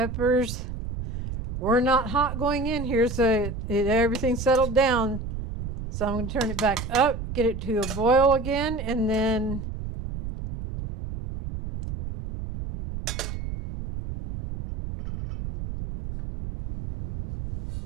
were not hot going in here, so everything settled down. So I'm going to turn it back up, get it to a boil again, and then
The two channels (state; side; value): noise; right; rumble, 7 dB below the sound